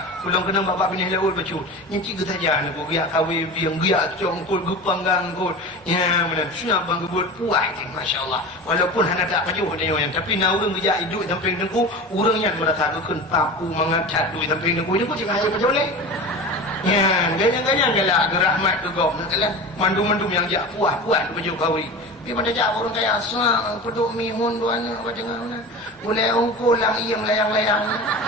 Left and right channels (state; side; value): normal; both; correlation 0.31